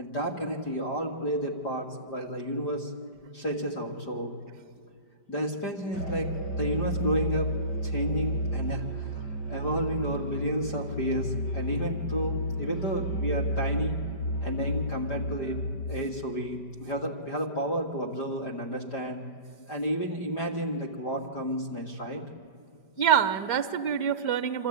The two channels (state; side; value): late; right; 5.1 ms